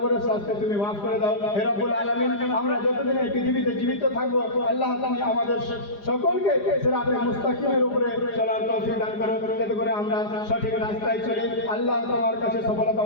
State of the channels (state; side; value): late; right; 4.9 ms